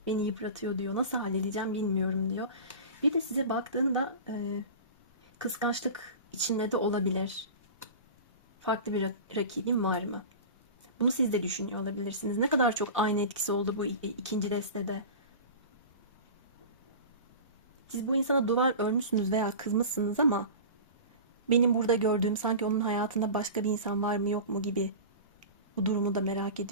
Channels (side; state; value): both; inverted; correlation -0.33